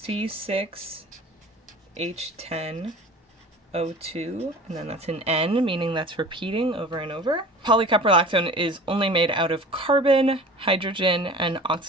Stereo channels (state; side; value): normal; both; correlation 0.41